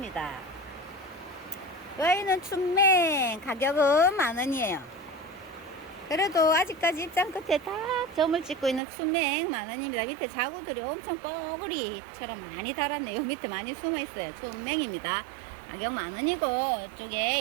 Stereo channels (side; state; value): left; drops out; at 8.8 s